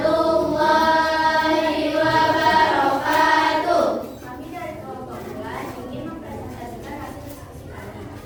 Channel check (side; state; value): both; identical; correlation 1.00